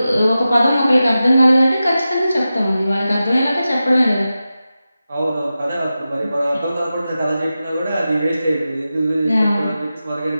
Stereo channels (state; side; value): inverted; both; correlation -0.93